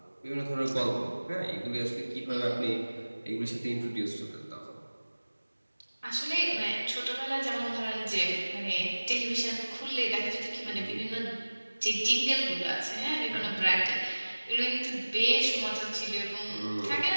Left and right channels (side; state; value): both; inverted; correlation -1.00